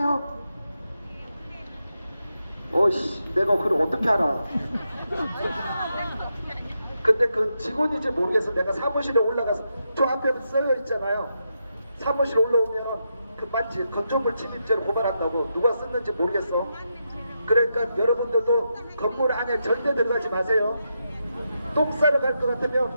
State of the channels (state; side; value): inverted; both; correlation -0.84